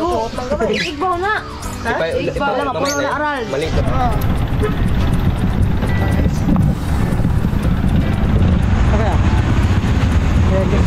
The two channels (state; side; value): identical; both; correlation 1.00